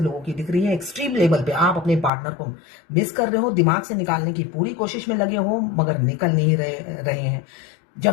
लोगों की दिख रही है। एक्सट्रीम लेवल पे आप अपने पार्टनर को मिस कर रहे हो, दिमाग से निकालने की पूरी कोशिश में लगे हो, मगर निकल नहीं रहे हैं।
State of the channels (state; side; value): drops out; right; at 2.1 s